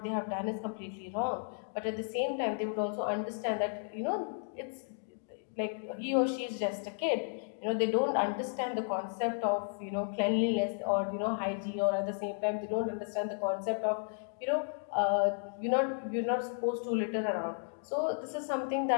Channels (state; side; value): silent; right; digital silence